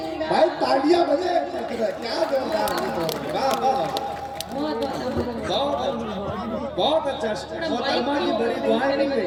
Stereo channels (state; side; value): identical; both; correlation 1.00